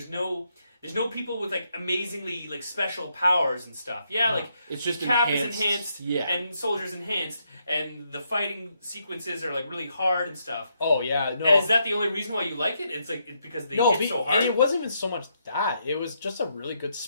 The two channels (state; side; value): inverted; both; correlation -0.78